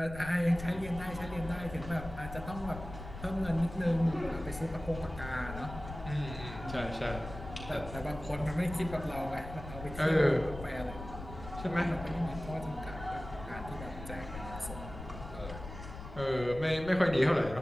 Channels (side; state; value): left; noise; rumble, 11 dB below the sound